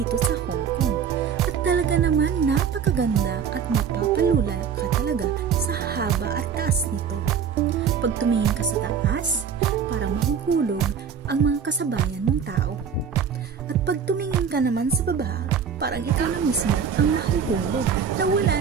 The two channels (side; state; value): left; quieter; 7.2 dB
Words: sa Hong Kong. At talaga naman napakaganda at mapapalula ka talaga sa haba at taas nito. Pag tumingin ka sa taas, parang mahuhulog ang mga kasabayan mong tao. At pag tumingin ka naman sa baba, parang ikaw na mismo ang mahuhulog na wala